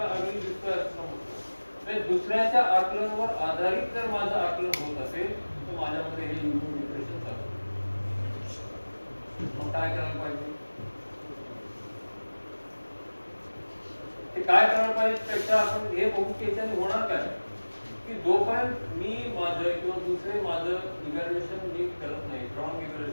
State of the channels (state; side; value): inverted; both; correlation -1.00